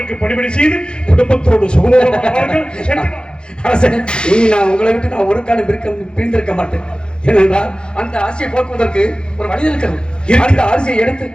பணிவிடை செய்து குடும்பத்தோடு சுகமாக நான் உங்களை விட்டு நான் ஒரு காலம் பிரிந்திருக்க மாட்டேன். ஏனென்றால் அந்த ஆசையை போக்குவதற்கு ஒரு வழி இருக்கிறது. அந்த ஆசையை எடுத்து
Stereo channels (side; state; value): right; late; 0.050 ms